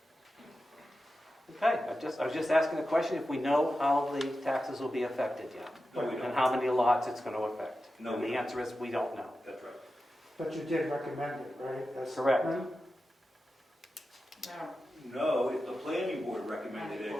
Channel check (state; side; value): normal; both; correlation 0.92